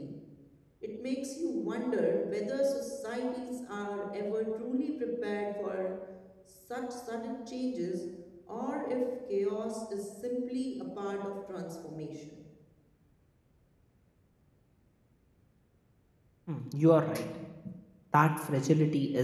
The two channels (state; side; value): identical; both; correlation 1.00